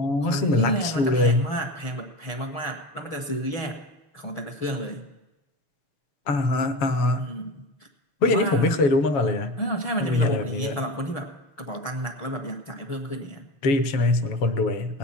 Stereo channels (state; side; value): late; right; 7.1 ms